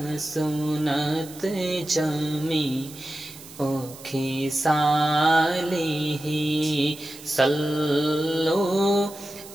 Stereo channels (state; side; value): noise; right; hiss, 17 dB below the sound